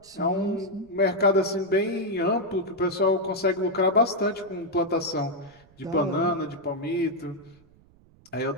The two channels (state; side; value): noise; right; rumble, 28 dB below the sound